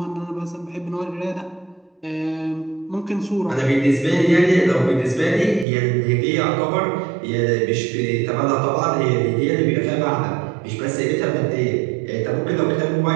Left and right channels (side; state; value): left; drops out; at 5.7 s